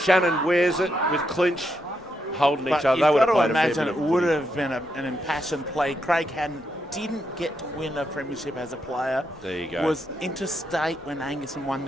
wears it with Clinch holding But each other. you've They would got have to played a fair imagine bit it of would footy. have been an impassioned play. Craig Hadden didn't get to win a premiership as a player. There you go. Was interstate when Angaston won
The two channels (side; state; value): both; normal; correlation 0.81